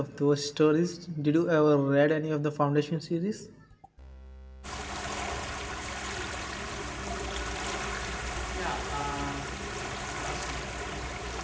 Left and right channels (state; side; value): identical; both; correlation 1.00